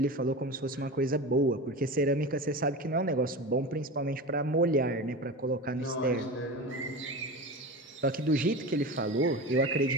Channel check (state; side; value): normal; both; correlation 0.28